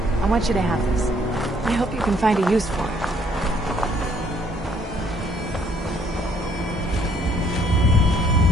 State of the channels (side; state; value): both; normal; correlation 0.65